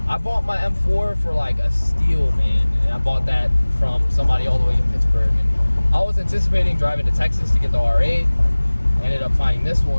I bought my M4 for like a steal, man. And I bought that from somebody all the way in Pittsburgh. And I was anticipating driving to Texas to get the R8. I ended up finding this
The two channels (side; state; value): both; inverted; correlation -1.00